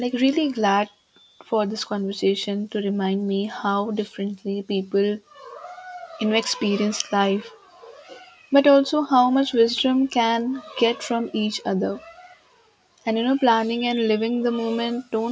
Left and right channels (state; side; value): identical; both; correlation 1.00